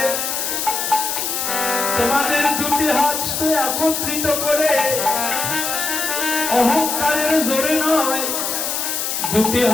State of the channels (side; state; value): left; noise; hiss, 1 dB below the sound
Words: তোমাদের দুটি হাত একত্রিত করে অহংকারের জোরে নয়, দুটি